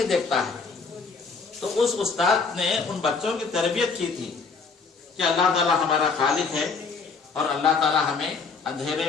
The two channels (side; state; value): right; quieter; 4.8 dB